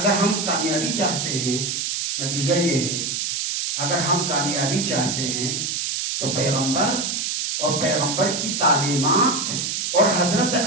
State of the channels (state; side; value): noise; right; hiss, 1 dB below the sound